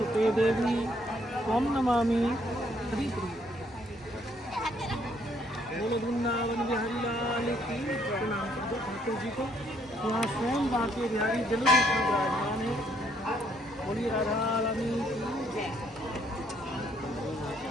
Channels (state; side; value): normal; both; correlation 0.68